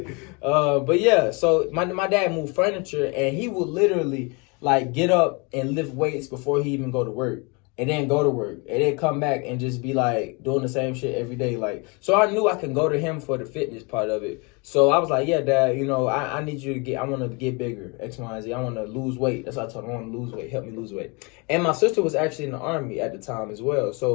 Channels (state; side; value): quieter; right; 30.5 dB